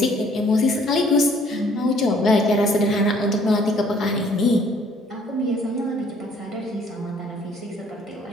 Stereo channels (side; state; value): both; normal; correlation 0.60